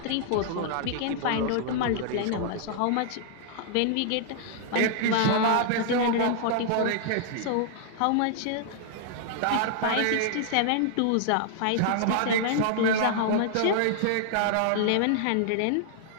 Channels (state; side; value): different; both; correlation -0.01